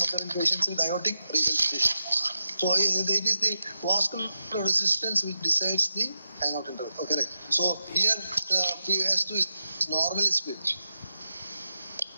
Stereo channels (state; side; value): inverted; both; correlation -0.89